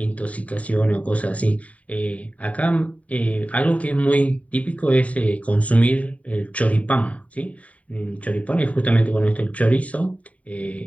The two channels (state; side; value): late; right; 0.068 ms